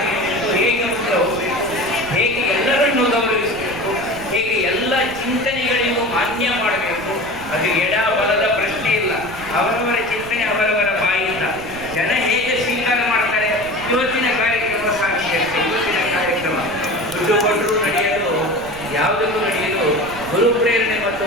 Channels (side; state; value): right; noise; rumble, 15 dB below the sound